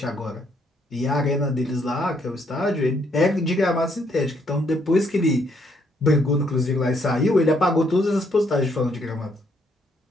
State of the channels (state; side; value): normal; both; correlation 0.71